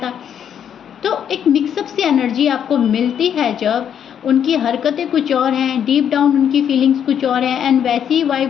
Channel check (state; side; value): quieter; right; 8.8 dB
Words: तो एक मिक्सअप सी एनर्जी आपको मिलती है जब उनकी हरकतें कुछ और हैं, डीप डाउन उनकी फीलिंग्स कुछ और हैं, एंड वैसी ही